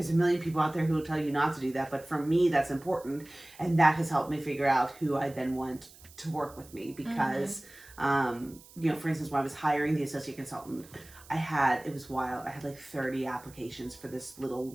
a million people out there who will tell you not to do that, but for me, that's important. And that has helped me figure out who I then want to work with me, because, for instance, when I was hiring the associate consultant, it was wild. I had like 30 applications for this little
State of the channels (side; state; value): right; noise; hiss, 22 dB below the sound